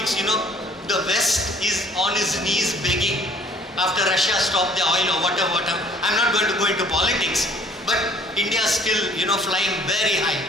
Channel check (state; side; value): normal; both; correlation 0.56